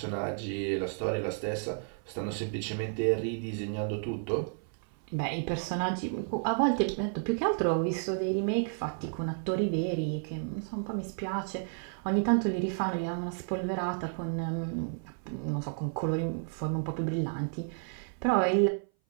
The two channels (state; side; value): silent; left; 57 dB below the other